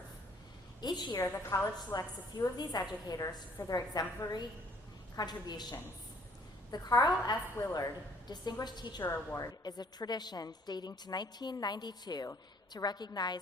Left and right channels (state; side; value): normal; both; correlation 0.60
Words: Each year, the college selects a few of these educators for their exemplary contributions. The Carl F. Willard Distinguished Teacher Award is a tradition dating to 1992 to recognize